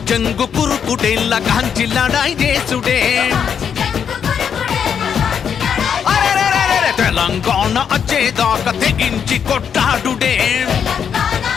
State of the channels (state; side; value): quieter; right; 7.6 dB